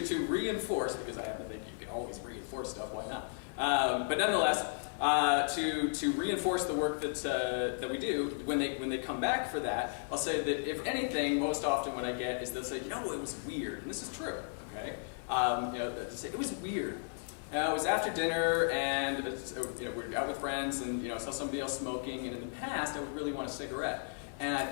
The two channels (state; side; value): silent; right; 55 dB below the other